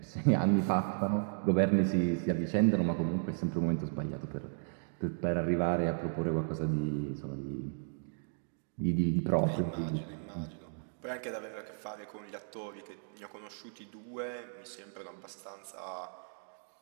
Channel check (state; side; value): silent; left; digital silence